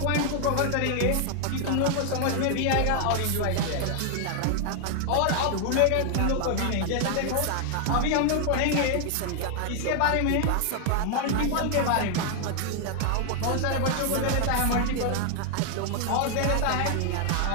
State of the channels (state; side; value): different; both; correlation 0.00